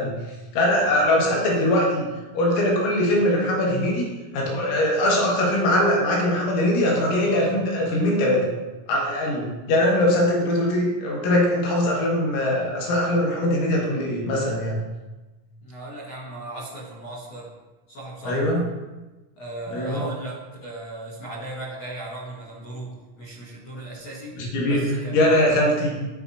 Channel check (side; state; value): right; late; 17 ms